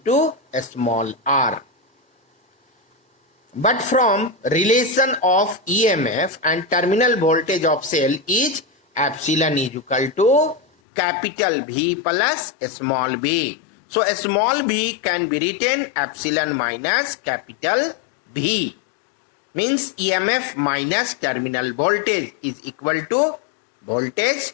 a small r. But from relation of EMF and terminal voltage of cell is epsilon is equal to capital V plus a small v. So a small v can be written epsilon minus capital V. Means EMF minus terminal voltage is equal to voltage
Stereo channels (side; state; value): right; drops out; at 10.7 s